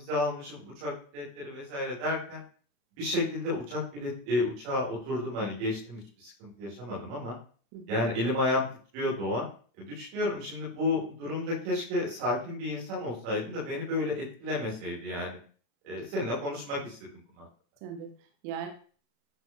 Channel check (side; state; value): left; late; 35 ms